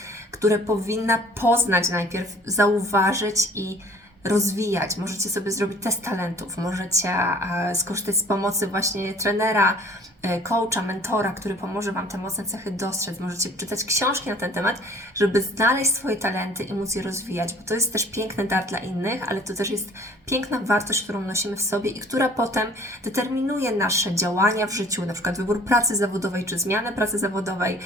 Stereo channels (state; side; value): normal; both; correlation 0.52